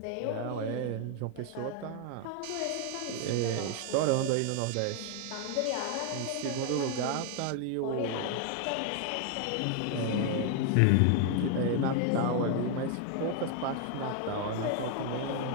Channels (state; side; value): different; both; correlation 0.00